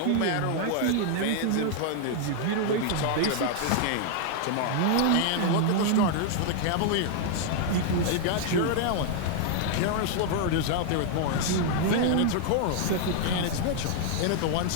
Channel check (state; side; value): different; both; correlation 0.00